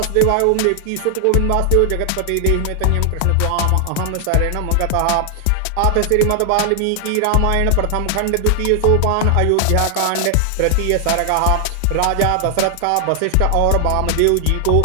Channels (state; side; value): different; both; correlation 0.00